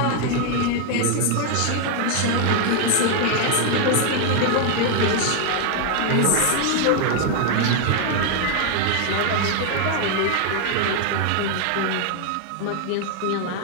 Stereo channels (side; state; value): both; different; correlation 0.00